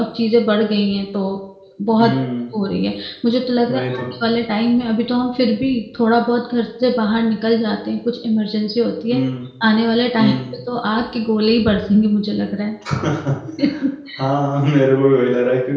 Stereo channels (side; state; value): both; identical; correlation 1.00